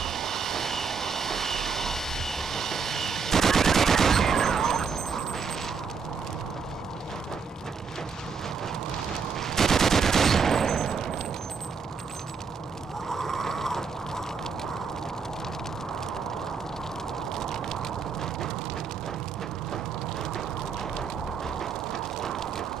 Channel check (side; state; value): left; quieter; 5.7 dB